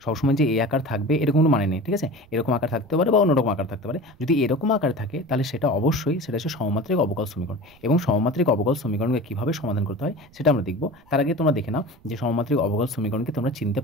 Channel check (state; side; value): noise; right; rumble, 28 dB below the sound